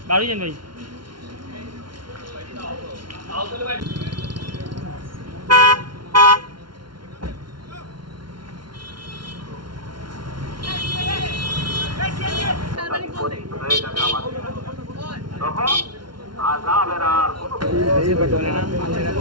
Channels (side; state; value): left; late; 0.72 ms